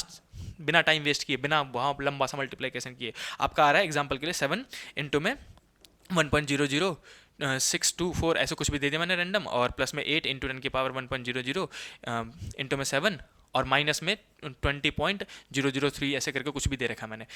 बिना टाइम वेस्ट किए, बिना वहाँ लंबा सा मल्टीप्लिकेशन किए आपका आ रहा है एग्जांपल के लिए 7 इंटू में 1.00624 ऐसे कुछ भी दे दिया मैंने रैंडम, और प्लस में 8 इंटू 10⁻1.00 इंटू में 7 और माइनस में 20.003 ऐसे करके कुछ भी दे रखा मैंने,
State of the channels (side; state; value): both; identical; correlation 1.00